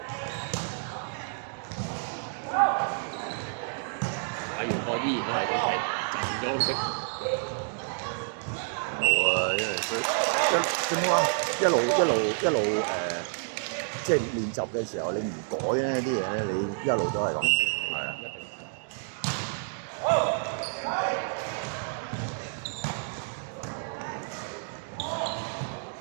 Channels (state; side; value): silent; left; digital silence